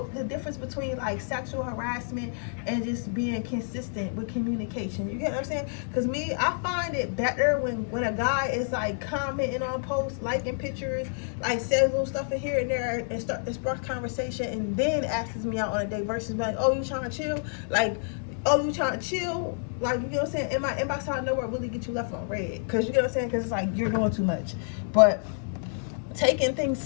the difference between like sexual harassment and just being consistent with communication. You get what I'm saying? Because I find it better when a guy is like commenting on posts, liking pictures, like says little stuff in here and there, and sparks conversation, and then asks me out on a date, versus like, oh, you trying to chill? Like, oh, you trying to chill? Like, you get what I'm saying? In my inbox out of nowhere really get you left on red. Because you get what I'm saying? Because it's like you're doing too much. But taking things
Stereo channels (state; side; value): silent; right; digital silence